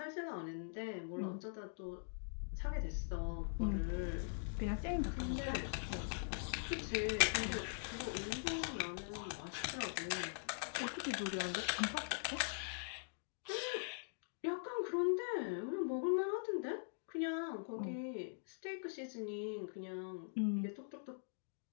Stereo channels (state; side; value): silent; right; digital silence